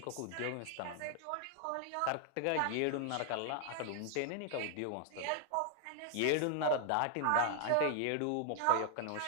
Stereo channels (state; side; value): different; both; correlation -0.01